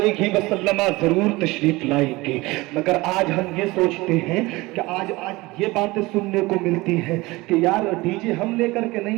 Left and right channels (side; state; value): left; quieter; 21.5 dB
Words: वसल्लम जरूर तशरीफ लाएंगे। मगर आज हम ये सोचते हैं कि आज ये बातें सुनने को मिलती है कि यार डीजे हम लेकर के